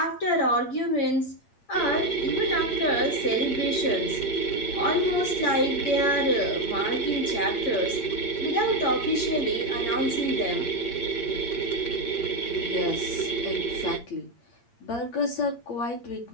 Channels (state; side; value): late; right; 8.6 ms